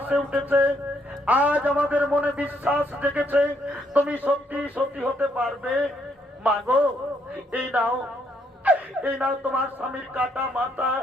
উঠেছে, আজ আমাদের মনে বিশ্বাস জেগেছে তুমি সত্যি সত্যি হতে পারবে। মা গো, এই নাও, এই নাও তোমার স্বামীর কাটা মাথা,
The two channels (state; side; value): normal; both; correlation 0.72